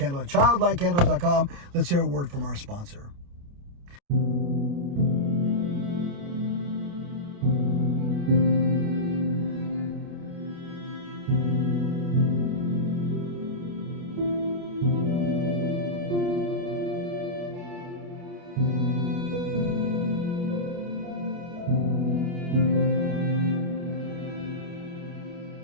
at childlightcandles.com. Let's hear a word from our sponsor.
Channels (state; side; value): late; left; 29 ms